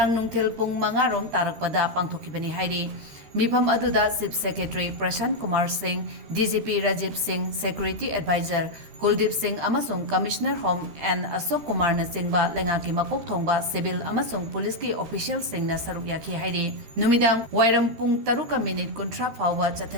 nungthil pung mangarom tarakpada pangthokibani hairi Meefam aduda Chief Secretary Prashant Kumar Singh, DGP Rajiv Singh, Security Advisor Kuldeep Singh amasung Commissioner Home and Ashok Kumar na singba lengaki makok thongba civil amasung police ki official sing na saruk yaki hairi numidang wairam pung taruka minute kontra phawwa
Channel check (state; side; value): late; left; 13 ms